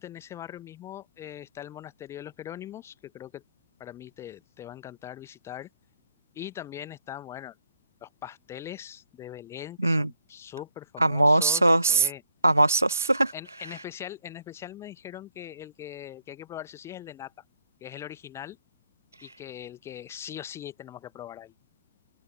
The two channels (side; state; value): both; inverted; correlation -0.70